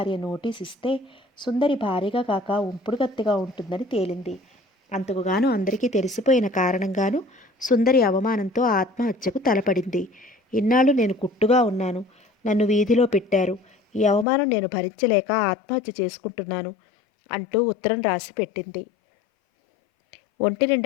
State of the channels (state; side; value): drops out; right; at 14.2 s